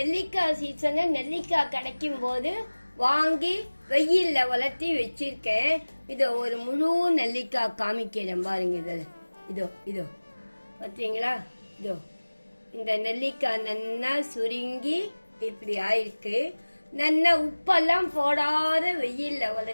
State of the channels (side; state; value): both; inverted; correlation -1.00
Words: சீசன்ல நெல்லிக்காய் கிடைக்கும் போது வாங்கி வெயில்ல வளர்த்தி வச்சிருக்கேன். இதோ ஒரு முழு நெல்லிக்காய் காமிக்கிறேன் பாருங்க. இதோ பார்த்தீங்களா? இதோ இந்த நெல்லிக்காய் நல்லா சுருங்கி இப்படி ஆயிருக்கு. நல்லா உப்பெல்லாம் போடாத வெயில்ல